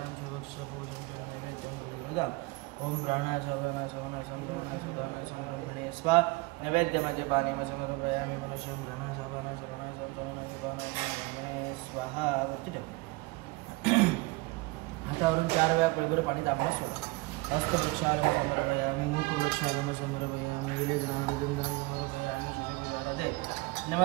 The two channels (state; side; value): quieter; left; 23.5 dB